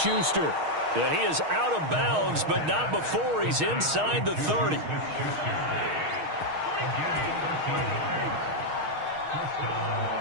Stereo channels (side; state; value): left; late; 6.4 ms